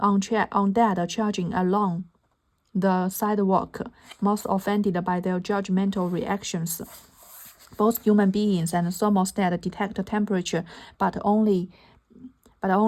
along the sidewalk, most offended by their judgmental reactions. Both human beings and thermostat detect temperature, but only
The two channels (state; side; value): identical; both; correlation 1.00